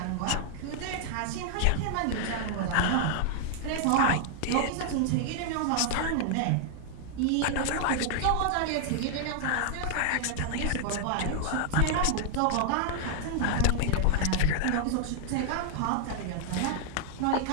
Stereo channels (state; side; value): different; both; correlation -0.01